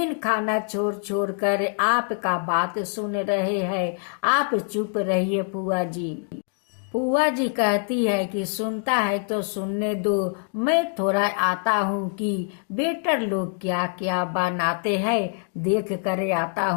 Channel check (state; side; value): silent; right; 56 dB below the other